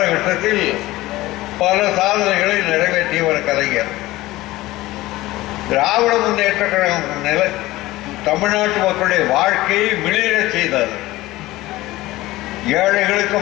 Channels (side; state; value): right; quieter; 17.9 dB